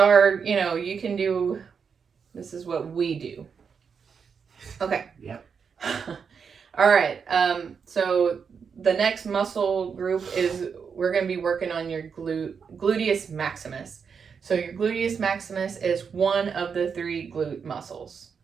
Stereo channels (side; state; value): left; quieter; 6.3 dB